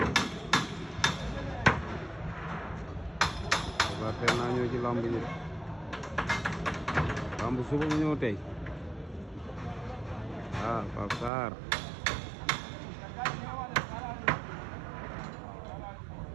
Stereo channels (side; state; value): left; drops out; at 11.3 s